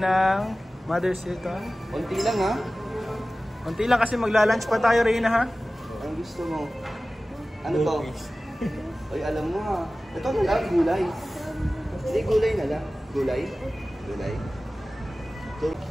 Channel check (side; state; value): both; normal; correlation 0.97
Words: ng Mother Seton. Konti lang ha? Konti lang kasi magla-lunch pa tayo Reyna ha? Ang gusto mo? Ano to? Oy, alam mo ha. Ito na lang, gulay. Hindi, gulay na lang. Gulay? Gulay. Ito.